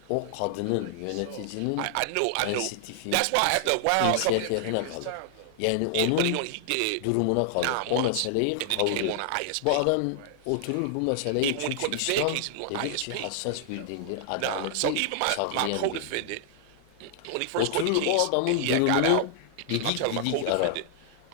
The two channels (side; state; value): both; different; correlation -0.01